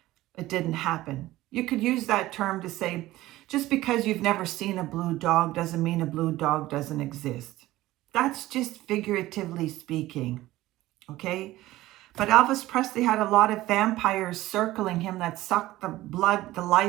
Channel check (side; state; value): left; quieter; 16.7 dB